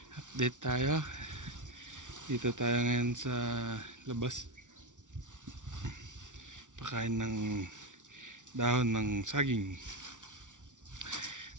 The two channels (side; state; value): left; late; 0.87 ms